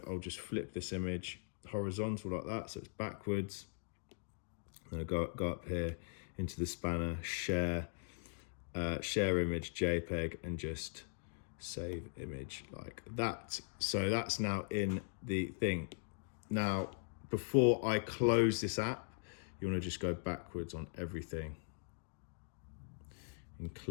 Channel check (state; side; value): silent; right; digital silence